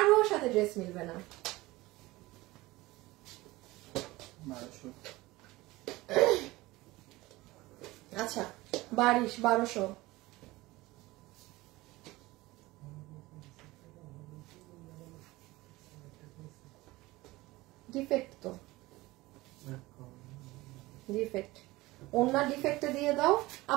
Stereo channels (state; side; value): quieter; left; 19.8 dB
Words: সাথে ড্রেস মিলবে না। আচ্ছা, 1200। ডিফেক্ট তো, ডিফেক্ট, ওনার ডিফেক্টে দিয়ে দাও